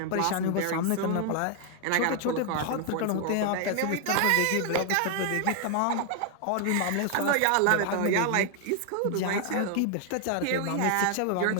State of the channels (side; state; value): both; different; correlation 0.00